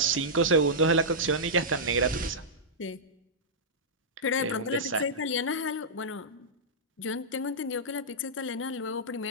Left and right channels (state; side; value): normal; both; correlation -0.12